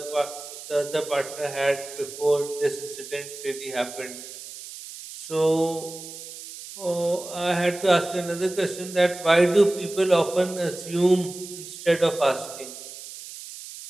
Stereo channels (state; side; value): noise; right; hiss, 13 dB below the sound